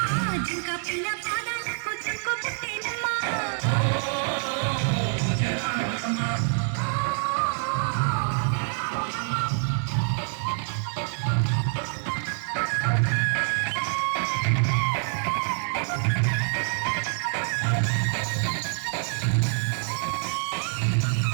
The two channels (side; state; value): left; silent; 61 dB below the other